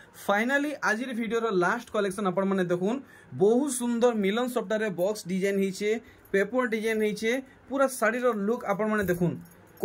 फाइनली आज वीडियो रो लास्ट कलेक्शन आपन माने देखुन बहुत सुंदर मिलन सॉफ्टवेयर रे बॉक्स डिजाइन हिचे पेपर डिजाइन हिचे पूरा साड़ी रो लुक आपन माने देखुन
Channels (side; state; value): both; identical; correlation 1.00